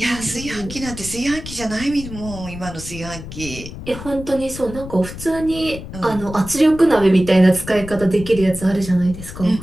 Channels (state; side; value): noise; left; rumble, 12 dB below the sound